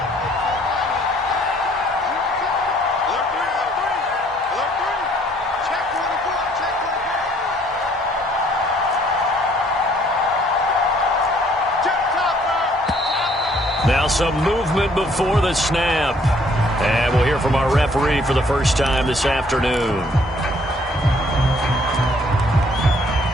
Now some movement before the snap. And we'll hear from our referee for the first time this afternoon.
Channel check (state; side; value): normal; both; correlation 0.62